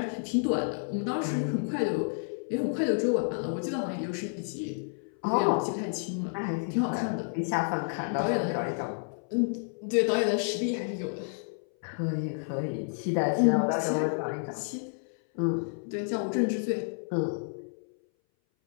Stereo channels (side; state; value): right; silent; 58 dB below the other